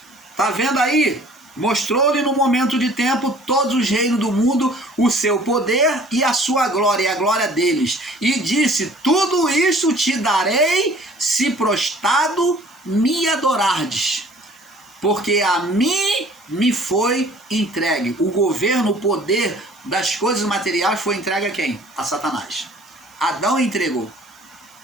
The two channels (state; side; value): noise; right; hiss, 29 dB below the sound